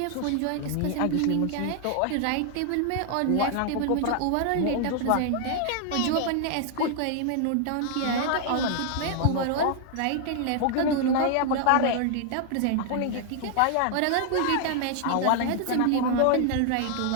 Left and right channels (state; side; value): different; both; correlation 0.00